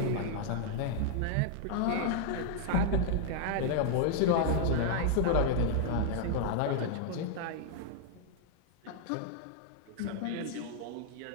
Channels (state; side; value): different; both; correlation 0.00